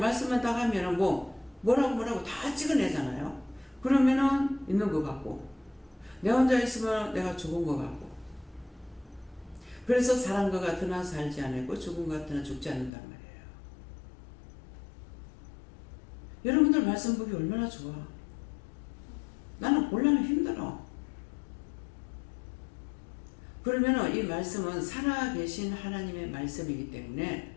말씀만 딱 하면은 뭐라고 다 찍어내잖아요. 그러면은 있는 것 같고 내 혼자 있으면 내가 죽은 것 같고. 그래서 사람 것 같으나 살지 않고 죽은 것 같으나 죽지 않는단 말이에요. 여러분들 말씀 보기 얼마나 좋아. 나는 곤란하면 힘들어. 그러면 이 말씀은 살아계신 하나님의 말씀이기 때문에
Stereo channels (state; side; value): drops out; right; at 12.9 s